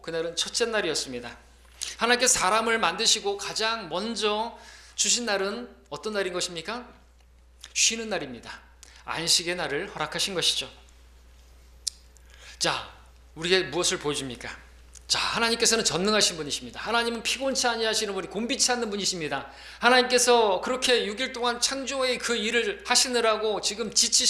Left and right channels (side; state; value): both; identical; correlation 1.00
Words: 그날은 첫째 날이었습니다. 하나님께서 사람을 만드시고 가장 먼저 주신 날은 어떤 날인 것입니까? 쉬는 날입니다. 안식의 날을 허락하신 것이죠. 자, 우리에게 무엇을 보여줍니까? 자, 하나님께서는 전능하신 분이십니다. 하나님은 피곤치 아니하시는 분이 곤비치 않는 분이십니다. 하나님께서 그렇게 6일 동안 창조의 그 일을 하시느라고 지금